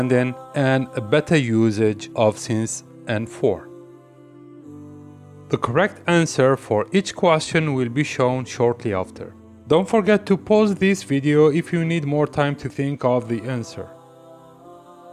and a better usage of since and for. The correct answer for each question will be shown shortly after. Don't forget to pause this video if you need more time to think of the answer.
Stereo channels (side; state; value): both; identical; correlation 1.00